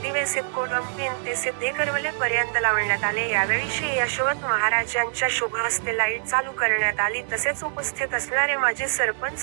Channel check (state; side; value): silent; left; 62 dB below the other